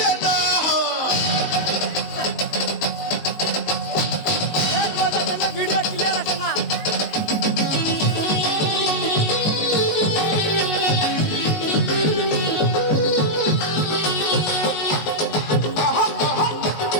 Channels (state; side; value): late; right; 19 ms